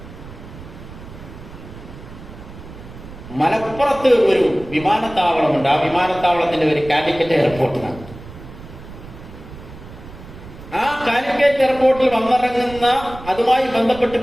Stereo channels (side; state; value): right; noise; rumble, 16 dB below the sound